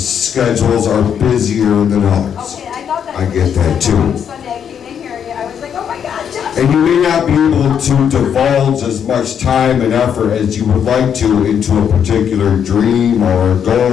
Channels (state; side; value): quieter; right; 8.2 dB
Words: schedules are busier than others. I get that too. And you may not be able to divulge as much time and effort as you would like to into a particular dream or a